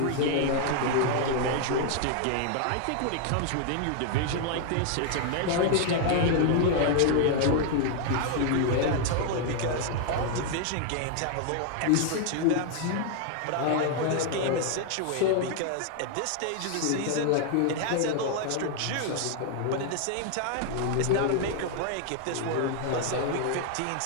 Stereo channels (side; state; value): both; different; correlation 0.00